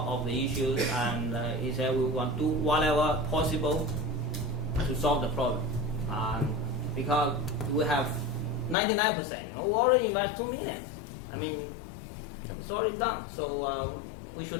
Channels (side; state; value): right; drops out; at 8.8 s